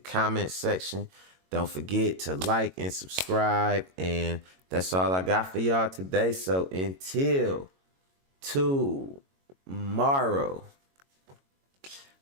section. Don't forget to like and subscribe. And that's all I got for y'all today. So until tomorrow.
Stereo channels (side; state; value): left; late; 22 ms